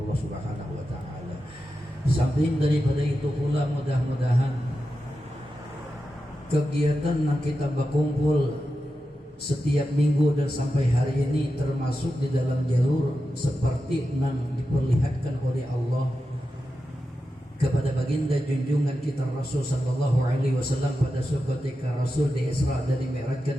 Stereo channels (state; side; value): normal; both; correlation 0.90